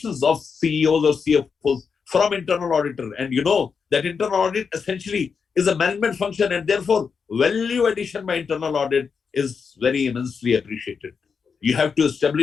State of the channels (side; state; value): right; quieter; 5.8 dB